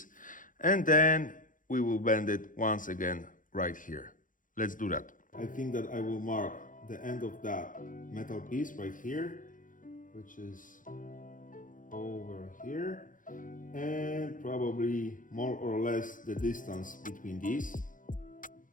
and then we will bend it once again right here. Let's do that. I think that I will mark the end of that metal piece right here, which is over here, and probably more or less the distance between these,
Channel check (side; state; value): right; late; 0.39 ms